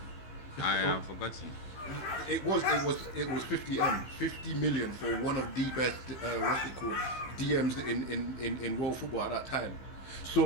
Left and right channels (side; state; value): right; late; 15 ms